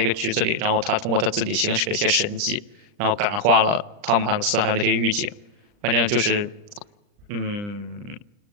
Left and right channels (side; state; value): left; late; 39 ms